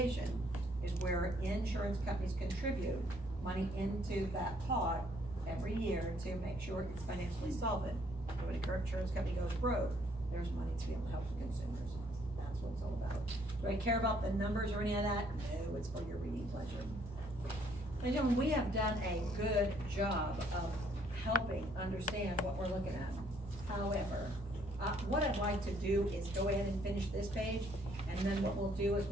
is where insurance companies contribute money into that pot every year to make sure it's financially solvent. So when a current insurance company goes broke, there's money to be able to help the consumers. That's what it's all about. Do I care about the numbers or any of that? No, it's for your reading pleasure. Ladies and gentlemen, we have done a good job of helping understand what we're looking at. However, what I'd like to do is go ahead and finish this page, and then what we'll do is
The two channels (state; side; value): normal; both; correlation 0.66